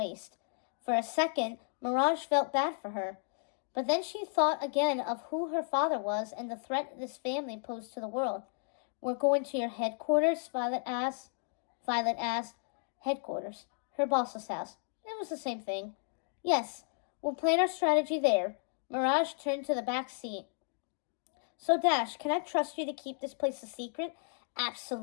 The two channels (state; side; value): silent; right; digital silence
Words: For a second, Mirage felt bad for her. But then she thought again of who her father was and the threat this family posed to the world. We're going to your headquarters? Violet asked. Headquarters. Her boss's house. It was the same thing. Yes, we'll plan our strategy there. Mirage turned to the back seat. So, Dash, can I trust you to keep this place a secret?